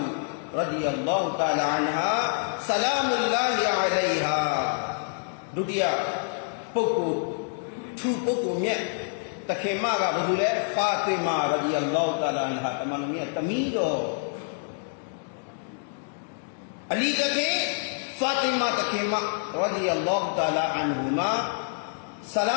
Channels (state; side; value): silent; right; digital silence